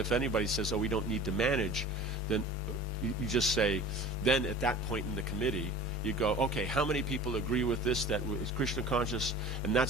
anybody says, we don't need to manage, then you just say, then at that point in the committee, you go, okay, how many people agree with this, that is Krishna conscious? And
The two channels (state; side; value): normal; both; correlation 0.40